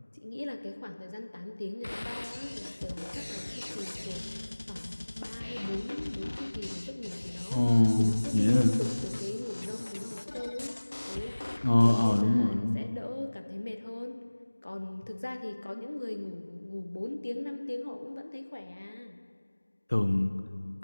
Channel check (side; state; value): both; inverted; correlation -1.00